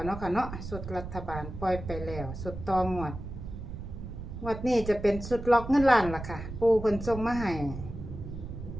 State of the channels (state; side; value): noise; right; rumble, 9 dB below the sound